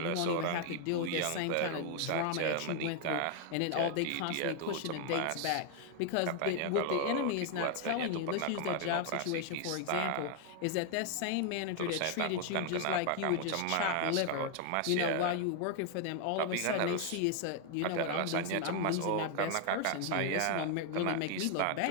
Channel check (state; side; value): different; both; correlation 0.00